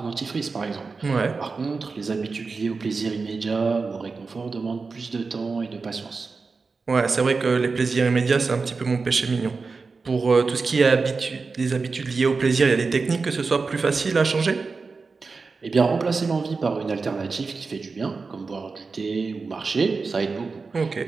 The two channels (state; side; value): quieter; left; 4.4 dB